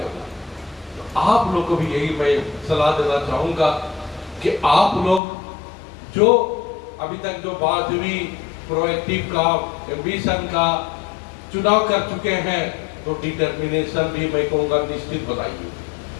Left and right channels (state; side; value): drops out; right; at 5.2 s